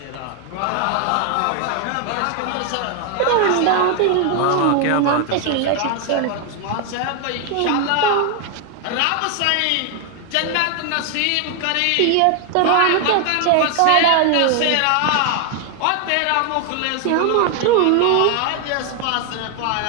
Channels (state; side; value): different; both; correlation 0.00